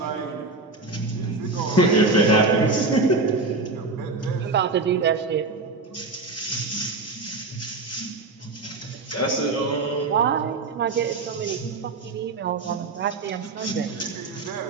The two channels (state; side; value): quieter; left; 3.7 dB